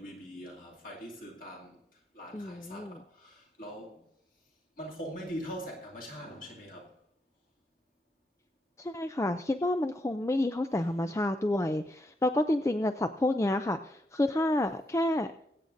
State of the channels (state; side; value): normal; both; correlation 0.80